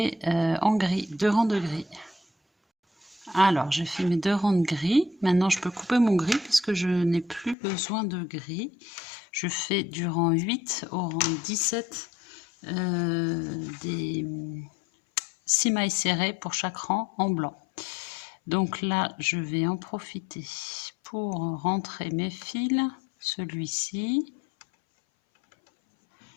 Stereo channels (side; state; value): right; drops out; at 7.6 s